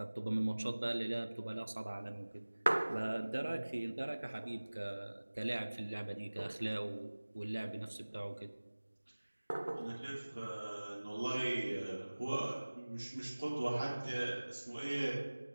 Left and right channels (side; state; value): both; inverted; correlation -1.00